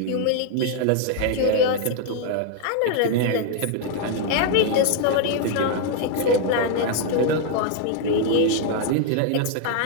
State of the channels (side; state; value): both; different; correlation 0.00